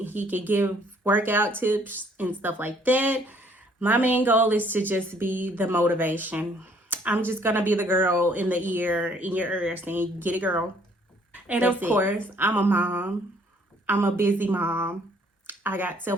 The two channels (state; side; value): normal; both; correlation 0.62